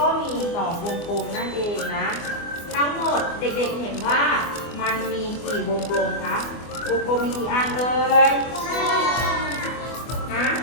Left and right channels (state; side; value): late; right; 24 ms